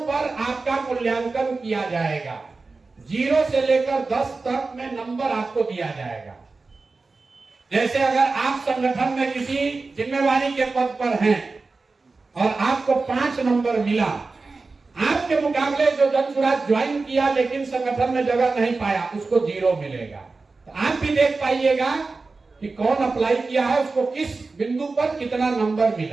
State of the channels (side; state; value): left; quieter; 3.9 dB